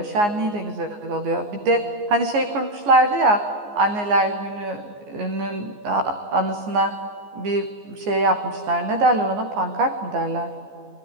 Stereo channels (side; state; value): left; late; 14 ms